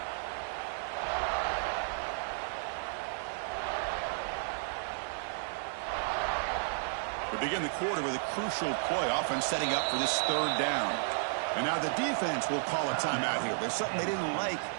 We begin the quarter with a crucial play. Offense setting up for this third down. And now the defense will call a timeout here. There's something they didn't like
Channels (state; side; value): silent; left; 56 dB below the other